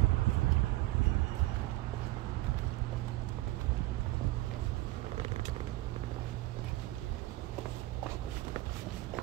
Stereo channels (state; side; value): quieter; left; 18.2 dB